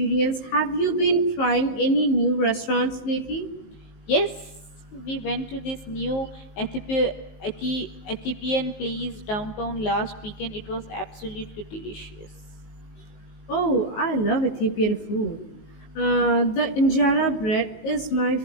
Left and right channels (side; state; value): right; late; 19 ms